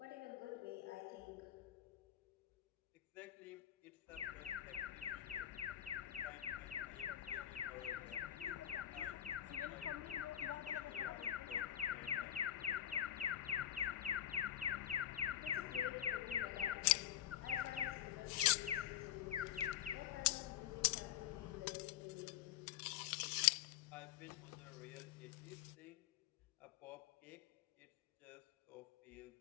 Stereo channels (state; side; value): quieter; right; 11.2 dB